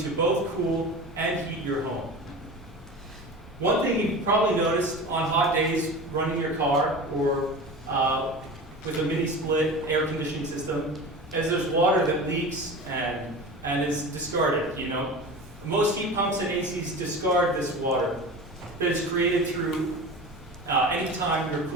to both cool and heat your home. One thing you've probably noticed on hot days running your car or with a mini split air conditioning system is there's water that leaks and is discarded. Most heat pumps and ACs discard this water that is created through any time you're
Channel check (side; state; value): both; normal; correlation 0.32